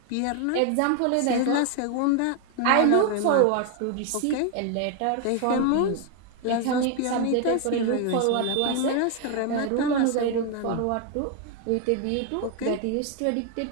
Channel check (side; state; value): both; different; correlation 0.01